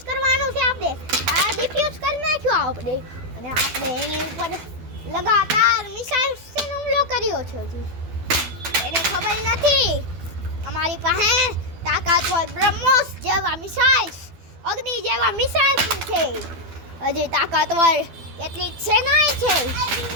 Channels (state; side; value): late; left; 12 ms